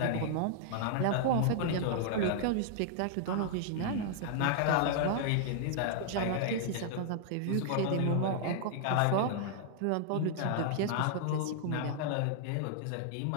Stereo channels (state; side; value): different; both; correlation -0.01